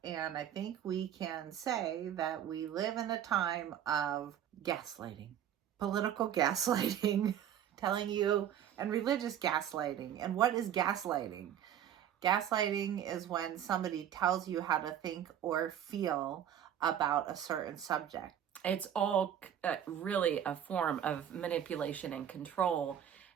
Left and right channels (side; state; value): left; quieter; 10.0 dB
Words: And I think we can say that we live in a time of gaslighting, political gaslighting, telling you, and religious gaslighting. And what is gaslighting? Gaslighting is when somebody tells you how to think or feel about a certain subject. It's all really a form of manipulation and control.